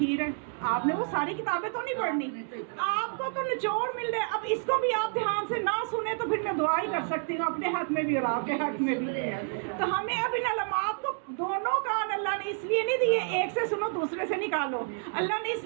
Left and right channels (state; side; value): silent; left; 58 dB below the other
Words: ہے. آپ نے وہ ساری کتابیں تو نہیں پڑھنی، آپ کو تو نچوڑ مل رہے. اب اس کو بھی آپ دھیان سے نہ سنیں تو پھر میں دعا ہی کر سکتی ہوں اپنے حق میں بھی اور آپ کے حق میں بھی. تو ہمیں اب ان علامات کو، دونوں کان اللہ نے اس لیے نہیں دیے ایک سے سنو دوسرے سے نکالو، اللہ نے اس